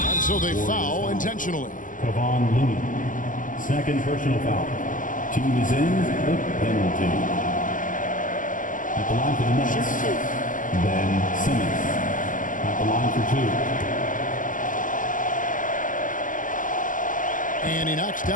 so they foul intentionally. Kevon Looney. Second personal foul. Team is in the penalty. At the line for the Nets. Ben Simmons. At the line for 2. And he knocks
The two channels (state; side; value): late; right; 0.38 ms